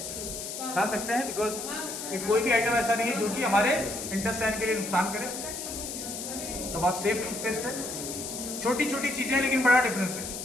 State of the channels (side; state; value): left; noise; hiss, 7 dB below the sound